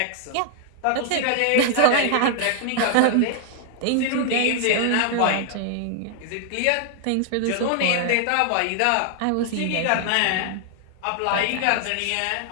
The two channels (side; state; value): both; different; correlation 0.00